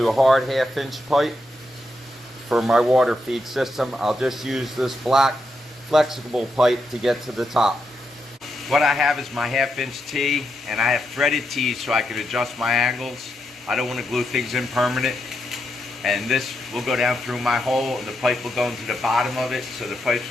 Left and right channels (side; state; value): both; normal; correlation 0.83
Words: a hard 1/2 inch pipe for my water feed system. I'll just use this black flexible pipe to get to the top. What I have is my 1/2 inch T, and I have threaded T's so I can adjust my angles. I don't want to glue things in permanent. And this will go down through my hole, and the pipe will go into the bottom of it, so the pipe's